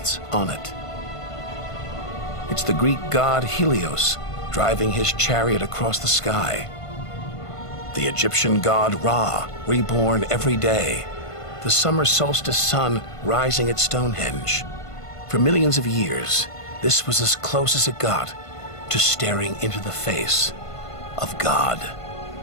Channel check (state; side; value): late; right; 1.5 ms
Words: on it. It's the Greek god Helios driving his chariot across the sky. The Egyptian god Ra, reborn every day. The summer solstice sun rising at Stonehenge. For millions of years, this was as close as it got to staring into the face of God.